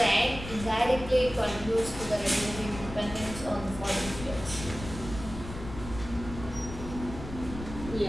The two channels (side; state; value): left; noise; rumble, 10 dB below the sound